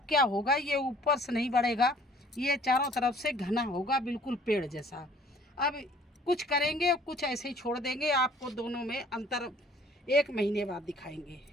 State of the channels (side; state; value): both; normal; correlation 0.55